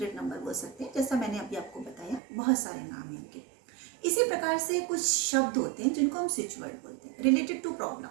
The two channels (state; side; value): drops out; left; at 2.2 s